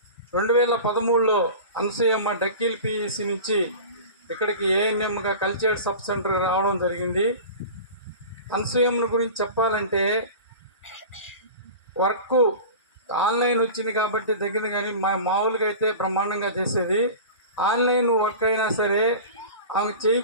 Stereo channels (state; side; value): inverted; both; correlation -0.34